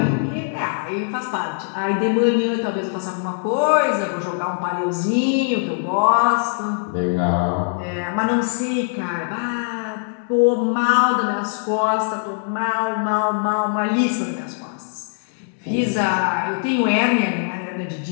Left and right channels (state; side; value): silent; right; digital silence